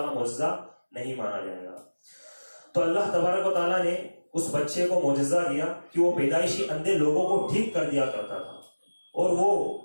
معجزہ نہیں مانا جائے گا. تو اللہ تبارک و تعالیٰ نے اس بچے کو معجزہ دیا کہ وہ پیدائشی اندھے لوگوں کو ٹھیک کر دیا کرتا تھا، اور وہ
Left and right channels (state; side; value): inverted; both; correlation -1.00